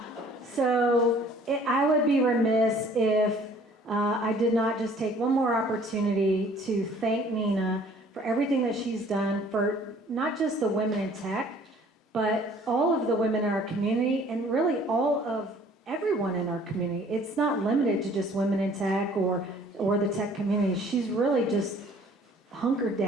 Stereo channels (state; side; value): normal; both; correlation 0.55